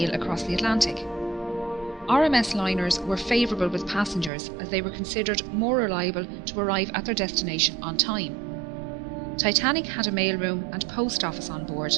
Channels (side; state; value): left; drops out; at 4.3 s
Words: across the Atlantic. RMS liners were favourable with passengers as they were considered more reliable to arrive at their destination on time. Titanic had a mailroom and post office on board,